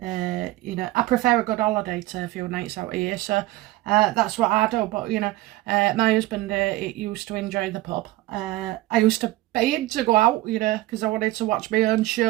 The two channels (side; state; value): left; quieter; 17.8 dB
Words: prefer a good holiday to a few nights out of here, so that's what I do. But my husband used to enjoy the pub. I used to pay him to go out, because I wanted to watch my own